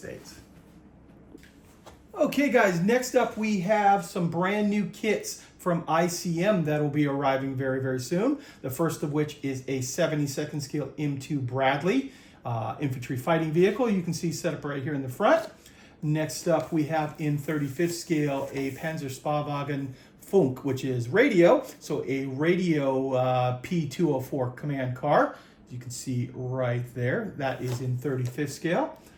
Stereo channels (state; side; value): identical; both; correlation 1.00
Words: Okay guys, next up we have some brand new kits from ICM that will be arriving very, very soon. The first of which is a 72nd scale M2 Bradley infantry fighting vehicle. You can see set up right here in the front. Next up we have in 35th scale a Panzerspahwagen Funk, which is radio. So a radio P204 command car. You can see right there. That is in 35th scale.